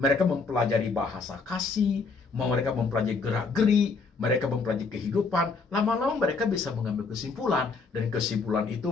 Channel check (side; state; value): right; quieter; 4.5 dB